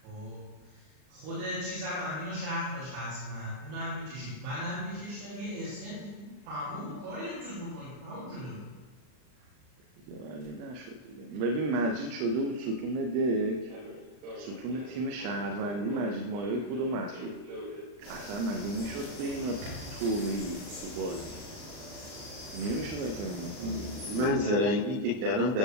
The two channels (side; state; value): left; late; 39 ms